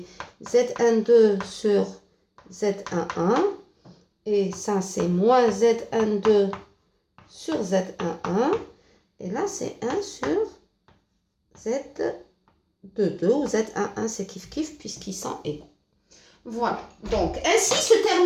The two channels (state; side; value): identical; both; correlation 1.00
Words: Zn2 sur Z11. Et ça, c'est moins Zn2 sur Z11. Et là, c'est 1 sur Z22 ou Z11. C'est kiff-kiff puisqu'ils sont égaux. Voilà. Donc, ainsi se